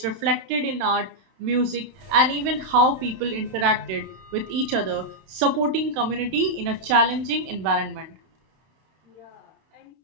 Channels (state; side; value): late; left; 32 ms